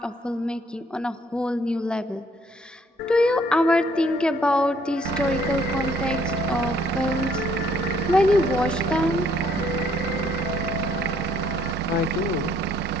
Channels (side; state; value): both; normal; correlation 0.65